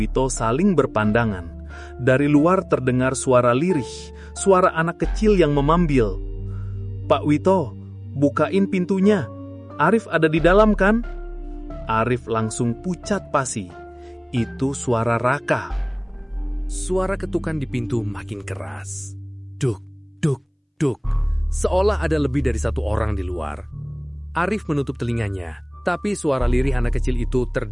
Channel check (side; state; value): both; identical; correlation 1.00